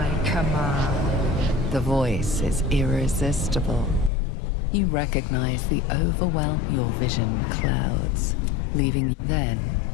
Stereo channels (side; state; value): right; drops out; at 4.1 s